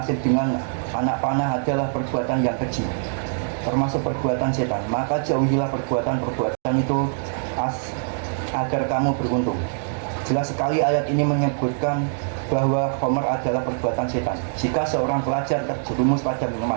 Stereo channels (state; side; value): silent; left; digital silence